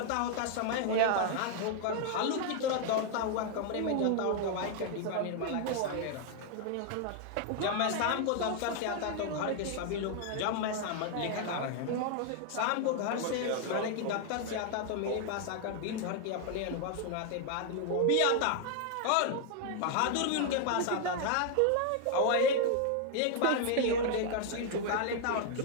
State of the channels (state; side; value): different; both; correlation 0.00